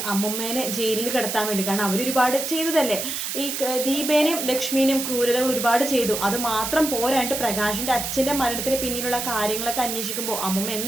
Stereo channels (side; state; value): right; noise; hiss, 3 dB below the sound